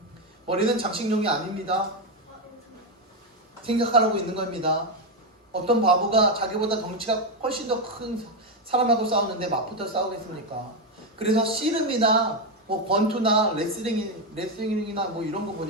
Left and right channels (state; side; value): normal; both; correlation 0.07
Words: 머리는 장식용이 아닙니다. 생각하라고 있는 겁니다. 어떤 바보가 자기보다 덩치가 훨씬 더 큰 사람하고 싸우는데 맞붙어 싸우겠습니까? 그래서 씨름이나 권투나 레슬링이나 이런 거